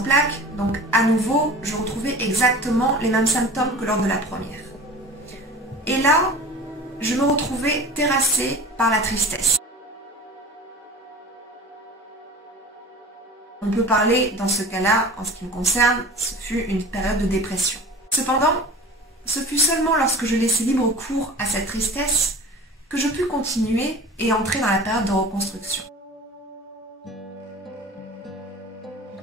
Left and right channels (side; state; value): both; normal; correlation 0.39